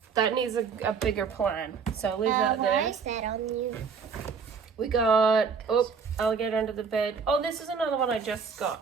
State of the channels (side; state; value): left; quieter; 5.8 dB